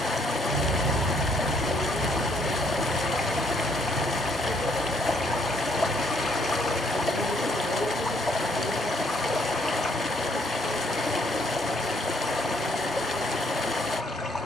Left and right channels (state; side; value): normal; both; correlation 0.68